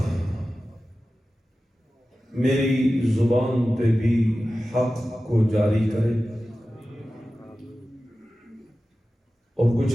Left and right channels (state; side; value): normal; both; correlation 0.95